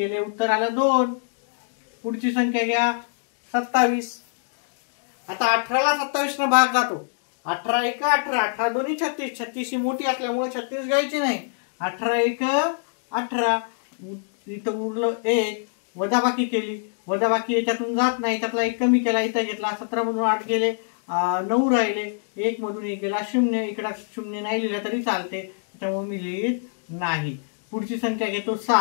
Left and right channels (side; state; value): right; silent; digital silence